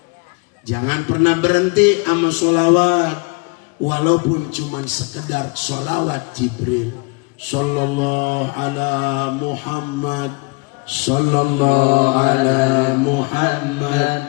jangan pernah berhenti sama sholawat, walaupun cuman sekedar sholawat Jibril. Sallallahu ala Muhammad, sallallahu ala Muhammad,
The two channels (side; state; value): right; quieter; 30.5 dB